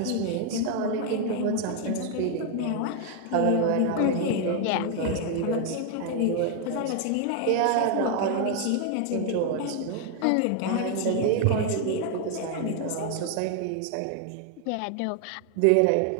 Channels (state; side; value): different; both; correlation 0.01